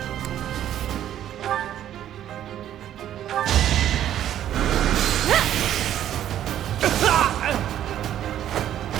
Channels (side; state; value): left; quieter; 11.3 dB